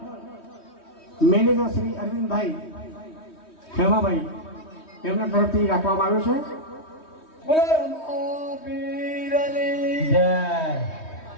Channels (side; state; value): right; late; 3.2 ms